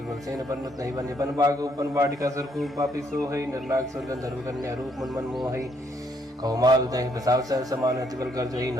सेन परमत नहीं बने बन बाग उपन बाटिका सरकू पापी सो है निर्नाग स्वर्ग धर्म कन्या रूप मन मन मोह कौमाल दही बसाव सर समान अतिबल कर जही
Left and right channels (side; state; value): both; normal; correlation 0.70